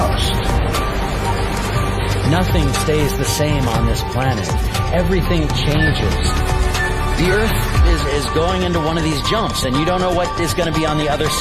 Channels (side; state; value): both; identical; correlation 1.00